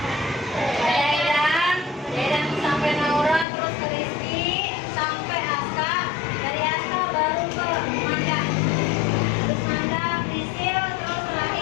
Dedan sampai Naura, terus ke Rizky, sampai Aska, dari Aska baru ke Manda, terus Manda, Prisil, terus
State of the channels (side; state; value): right; drops out; at 3.5 s